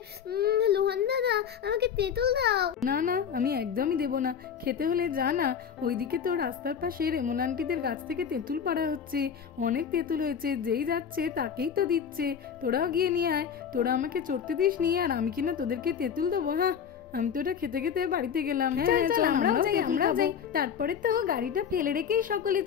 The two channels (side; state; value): right; quieter; 7.6 dB